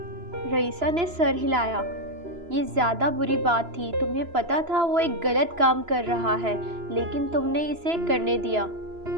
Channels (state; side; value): late; left; 2.9 ms